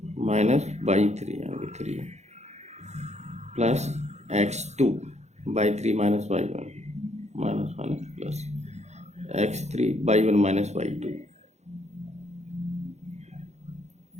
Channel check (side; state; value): left; late; 0.33 ms